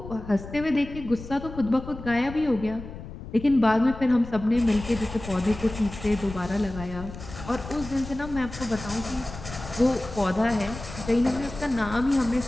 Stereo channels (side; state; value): left; noise; rumble, 12 dB below the sound